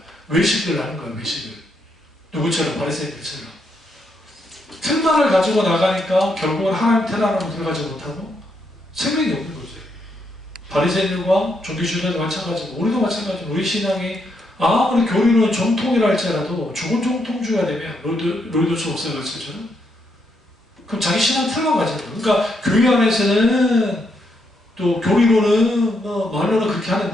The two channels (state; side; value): normal; both; correlation 0.78